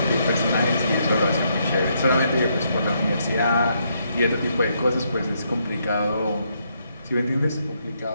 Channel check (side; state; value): both; inverted; correlation -0.75